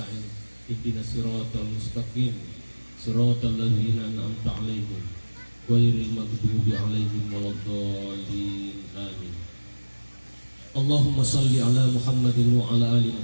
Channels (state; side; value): inverted; both; correlation -1.00